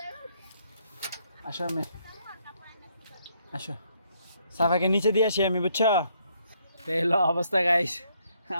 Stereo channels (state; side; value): inverted; both; correlation -0.71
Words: আসো আমি, আসো সাফাকে নিচে দিয়ে আসি আমি, বুঝছো? তো এলো অবস্থা গাইস।